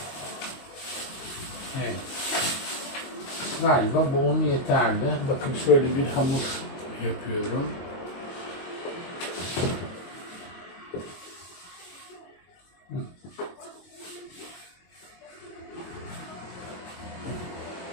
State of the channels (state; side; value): late; right; 22 ms